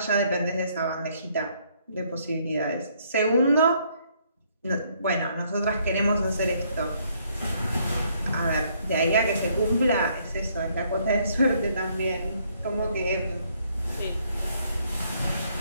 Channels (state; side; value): inverted; both; correlation -0.68